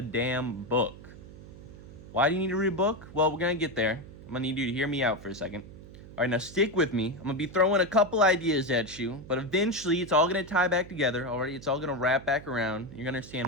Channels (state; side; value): noise; right; hum, 17 dB below the sound